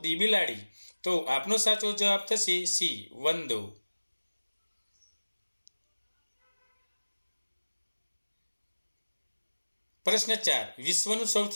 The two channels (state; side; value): inverted; both; correlation -1.00